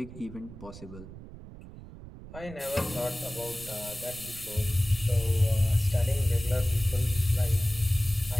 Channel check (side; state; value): right; noise; rumble, 15 dB below the sound